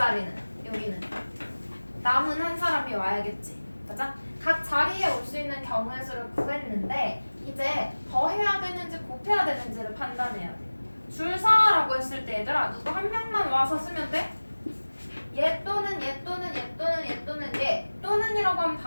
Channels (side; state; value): both; inverted; correlation -1.00